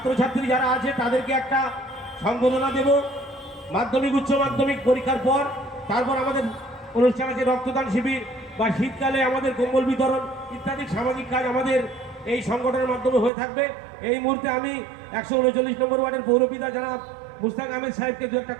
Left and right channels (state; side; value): drops out; left; at 13.3 s